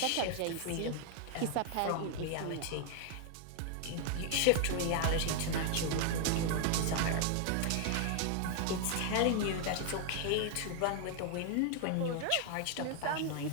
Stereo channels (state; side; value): different; both; correlation 0.00